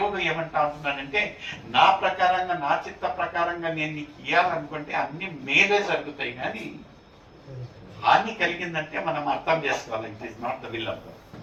ఏమంటా ఉంటున్నాడంటే, నా ప్రకారంగా, నా చిత్త ప్రకారంగా నేను నీకు ఇవ్వాలనుకుంటే అన్ని మేలే జరుగుతాయి, కానీ హాని కలిగిందంటే మనం అర్థం చేసుకోవాలి, it is not the will of God.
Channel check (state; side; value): identical; both; correlation 1.00